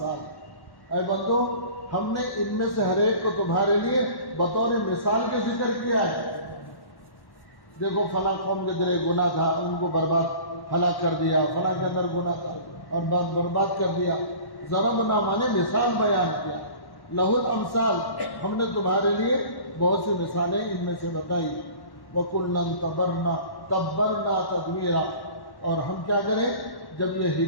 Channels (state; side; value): late; right; 1.1 ms